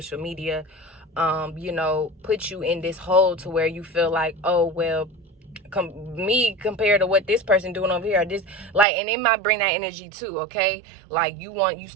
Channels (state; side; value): drops out; left; at 8.8 s